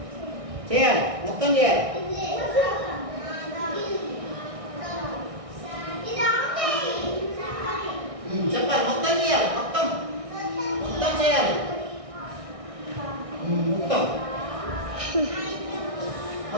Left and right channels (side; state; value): left; late; 1.6 ms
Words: చేయాలి. మొత్తం చేయాలి. చెప్పాలి. మొత్తం చేయాలి. మొత్తం చేయాలి.